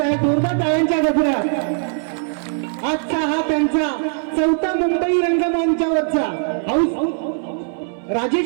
आहे. जोरदार टाळ्यांच्या गजरात. आजचा हा त्यांचा 4था मुंबई रंगमंचावरचा हाऊस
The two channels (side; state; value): left; silent; 61 dB below the other